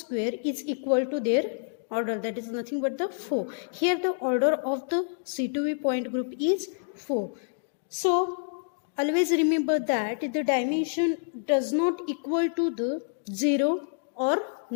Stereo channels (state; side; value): silent; right; digital silence